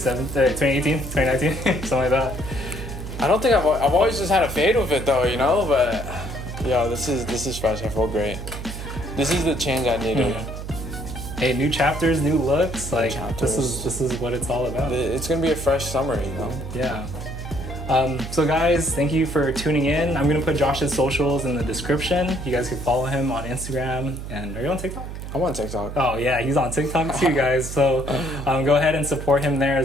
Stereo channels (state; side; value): noise; right; hum, 9 dB below the sound